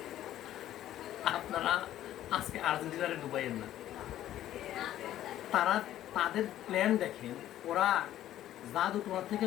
আপনারা আজকে আর্জেন্টিনারে ডুবাইয়েন না। তারা তাদের প্ল্যান দেখেন, ওরা জাদু তোমার থেকে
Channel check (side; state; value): right; quieter; 12.7 dB